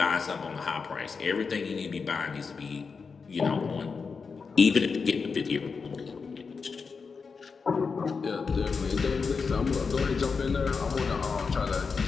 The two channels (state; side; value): quieter; right; 5.1 dB